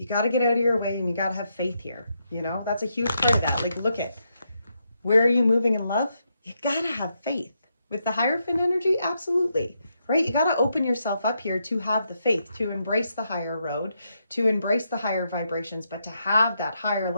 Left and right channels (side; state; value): both; inverted; correlation -0.81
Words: got to get out of your way, and you got to have faith here. You know, that's a huge part of that. Like, look at, where are you moving in love? You got to have faith. With the Hierophant energy, absolutely. Right? You got to open yourself up here to have the faith, to embrace the higher road, to embrace the higher vibrations, but to have that higher